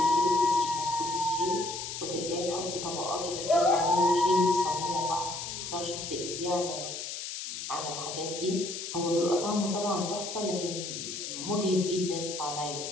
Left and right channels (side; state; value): left; noise; hiss, 6 dB below the sound